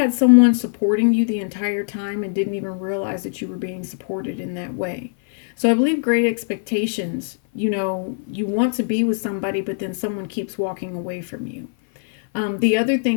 someone supporting you the entire time and didn't even realize that you were being supported in that way. So I believe Great Expectations, you want to be with somebody, but then someone keeps walking away from you. The other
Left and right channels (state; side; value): silent; right; 56 dB below the other